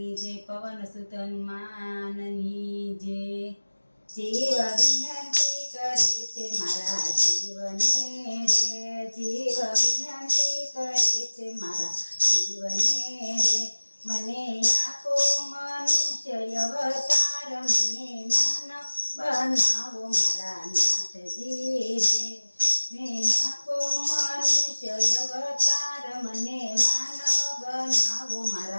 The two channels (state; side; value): inverted; both; correlation -1.00